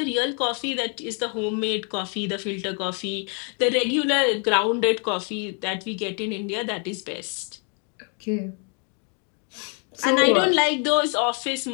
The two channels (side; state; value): right; quieter; 39.0 dB